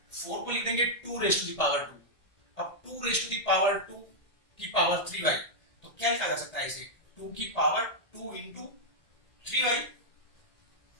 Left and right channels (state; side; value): late; right; 1.8 ms